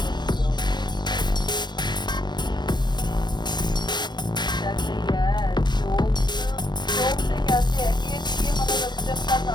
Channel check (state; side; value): late; right; 0.21 ms